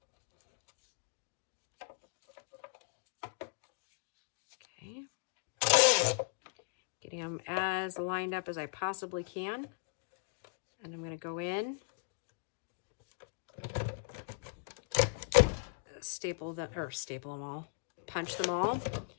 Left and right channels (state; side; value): silent; right; digital silence